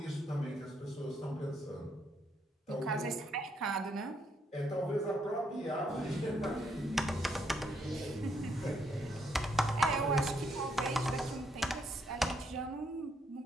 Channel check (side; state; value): both; normal; correlation 0.74